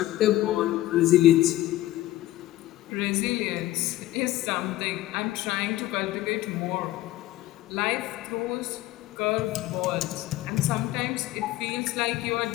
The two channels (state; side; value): quieter; right; 15.6 dB